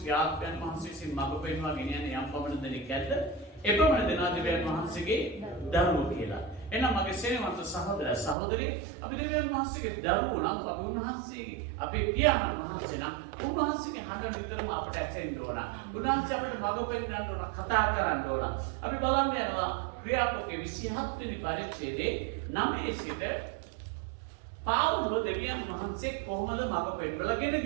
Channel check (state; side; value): drops out; left; at 8.3 s